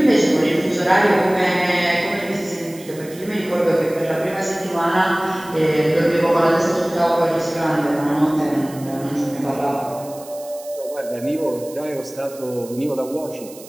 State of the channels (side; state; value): right; noise; hiss, 19 dB below the sound